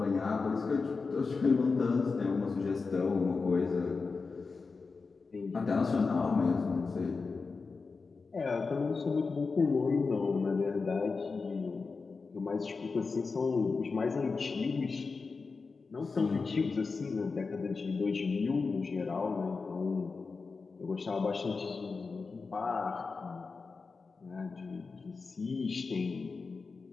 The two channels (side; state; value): right; quieter; 4.5 dB